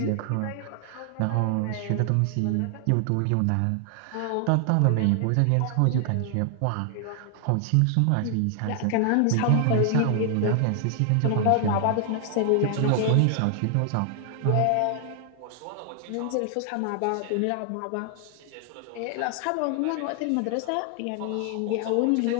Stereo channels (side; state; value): both; different; correlation 0.00